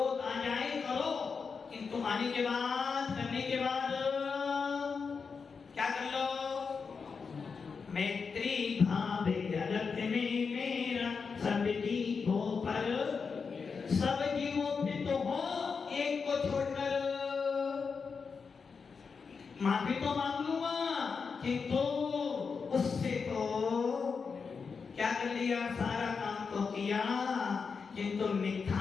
आ जाए करो, किंतु आने के बाद, करने के बाद क्या कर लो? मैत्री भाव जगत में मेरा सब जीवों पर, सब जीवों पे तो हो, एक को छोड़कर माफी तो मांग लूंगा, किंतु उससे तो क्या कर लिया? सारा काम तो किया, किंतु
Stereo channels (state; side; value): quieter; right; 5.4 dB